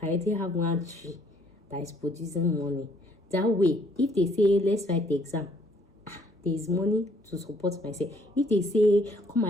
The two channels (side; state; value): both; normal; correlation 0.64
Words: I already have one tree that is producing money. That way, if they say let's write the exam, there is money to support myself. If they say come